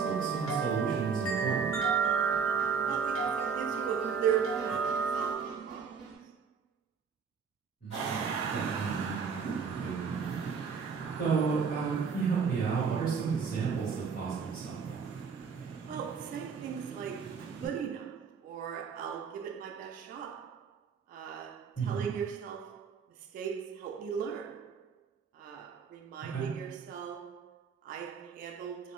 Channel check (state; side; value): quieter; left; 6.0 dB